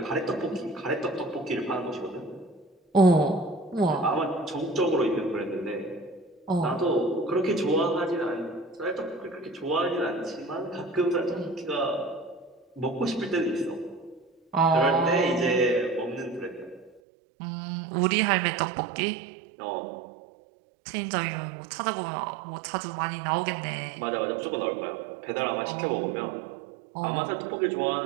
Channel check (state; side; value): drops out; left; at 17.0 s